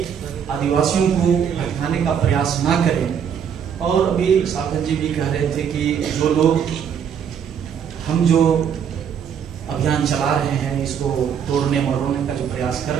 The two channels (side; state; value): left; quieter; 7.9 dB